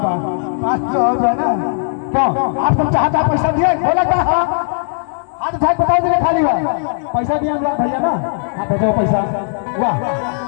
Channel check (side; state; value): right; silent; digital silence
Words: 500 हो जाए ना। क्यों आप तुम चाहता पैसा दिए बोला क्या? हाथ उठाए बताओ दिए खाली हुआ पैसा दिया अनुराग भैया ना। हाँ भेजो पैसा। वाह